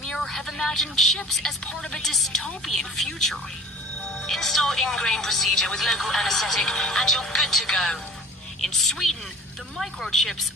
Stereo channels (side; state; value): both; normal; correlation 0.45